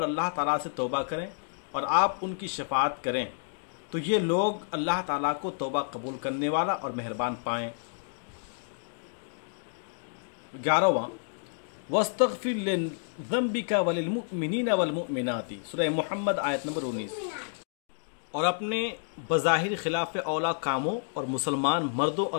اللہ تعالیٰ سے توبہ کریں اور آپ ان کی شفاعت کریں تو یہ لوگ اللہ تعالیٰ کو توبہ قبول کرنے والا اور مہربان پائیں۔ 11واں، وَاسْتَغْفِرْ لِذَنْبِكَ وَلِلْمُؤْمِنِينَ وَالْمُؤْمِنَاتِ، سورہ محمد آیت نمبر 19۔ اور اپنے بظاہر خلاف اولا کاموں اور مسلمان مردوں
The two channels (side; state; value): right; silent; digital silence